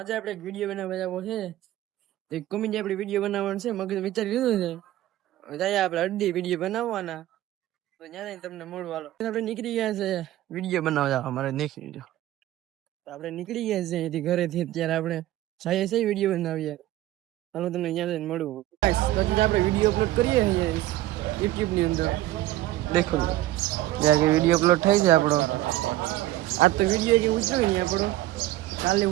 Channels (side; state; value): left; quieter; 15.2 dB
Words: આપણે એક વિડીયો બનાવવા જવો છે. એક કોમેડી આપણે વિડીયો બનાવવાનો છે. મગજ વિચારી લીધું છે. જાય આપણે અડધી વિડીયો બનાવવાના. તો ત્યાં તમને મળવા હાલો. આપણે નીકળી ગયા છે વિડીયો બનાવવા જવા. અમારે નીકળી ગયો તો આપણે નીકળી ગયા છે અહીંથી ઘરેથી. અત્યારે આપણે જઈએ છીએ વિડીયો બનાવીએ. હાલો તમને ત્યાં જઈને મળવું. પછી આપણે વિડીયો અપલોડ કરીએ યુટ્યુબ ની અંદર. દેખો જ્યાં વિડીયો અપલોડ થઈ છે આપણો. આજ તો વિડીયો જે ઉતર્યો નહીં આપણો. કાલે